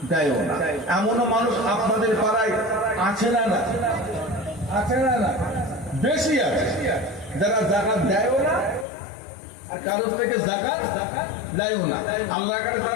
দেয়ও না। এমনও মানুষ আপনাদের পাড়ায় আছে না? না আছে না? না বেশি আছে যারা যাকাত দেয়ও না, আর কারোর থেকে যাকাত দেয়ও না। আল্লাহর কাছে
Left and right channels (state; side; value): drops out; right; at 8.8 s